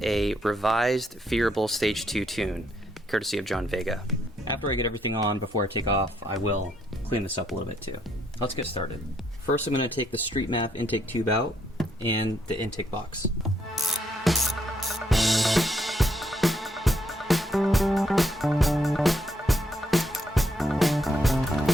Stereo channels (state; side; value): normal; both; correlation 0.74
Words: a revised Phearable Stage 2 tune, courtesy of John Vega. After I get everything on, before I take off, I will clean this up a little bit too. Let's get started. First, I'm going to take the Street MAF intake tube out and the intake box.